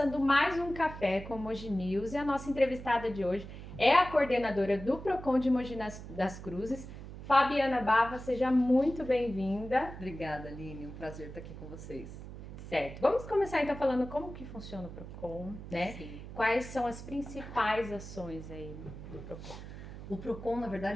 mais um Café com Mogi News e a nossa entrevistada de hoje é a coordenadora do Procon de Mogi das Cruzes, Fabiana Bava. Seja muito bem-vinda. Obrigada, Aline. Um prazer estar aqui com vocês. Certo, vamos começar então falando como que funciona o Procon, né? Sim. Quais são as principais ações aí do Procon? O Procon, na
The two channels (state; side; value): noise; right; hum, 12 dB below the sound